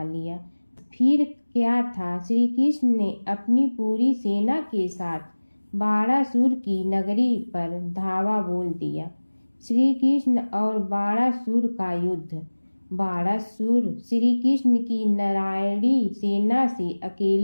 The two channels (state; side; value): inverted; both; correlation -1.00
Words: लिया। फिर क्या था, श्री कृष्ण ने अपनी पूरी सेना के साथ बाणासुर की नगरी पर धावा बोल दिया। श्री कृष्ण और बाणासुर का युद्ध। बाणासुर श्री कृष्ण की नारायणी सेना से